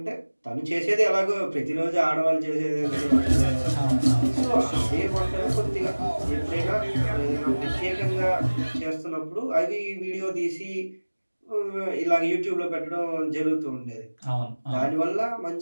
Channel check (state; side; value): inverted; both; correlation -1.00